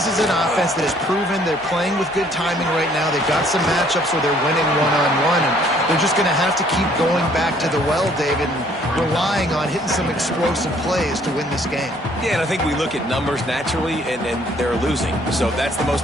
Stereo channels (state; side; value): normal; both; correlation 0.61